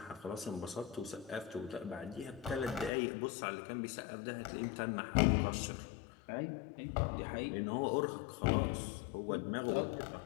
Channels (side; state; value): right; drops out; at 2.9 s